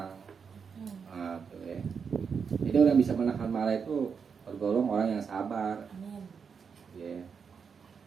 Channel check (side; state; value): left; quieter; 6.2 dB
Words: Tuh ya. Jadi orang bisa menahan marah itu tergolong orang yang sabar, Amin. ya.